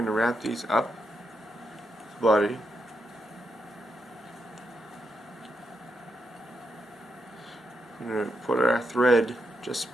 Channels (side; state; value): both; normal; correlation 0.83